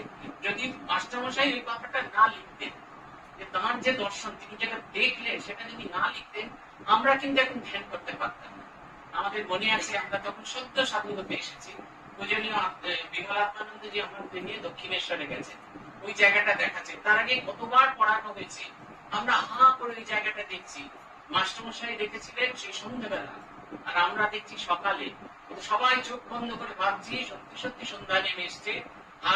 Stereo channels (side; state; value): both; identical; correlation 1.00